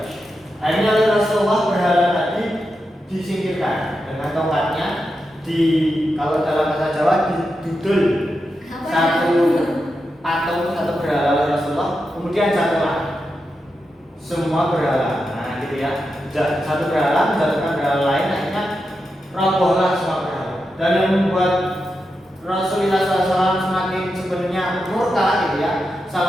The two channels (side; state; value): both; normal; correlation 0.88